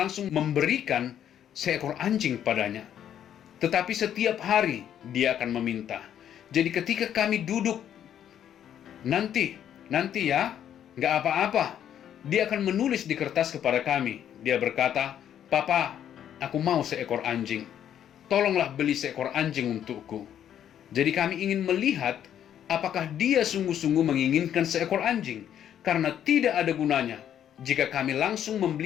memberikan seekor anjing padanya. Tetapi setiap hari dia akan meminta. Jadi ketika kami duduk, nanti ya, nggak apa-apa. Dia akan menulis di kertas kepada kami. Dia berkata, "Papa, aku mau seekor anjing. Tolonglah beli seekor anjing untukku." Jadi kami ingin melihat apakah dia sungguh-sungguh menginginkan seekor anjing. Karena tidak ada gunanya jika kami langsung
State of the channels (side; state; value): right; quieter; 10.0 dB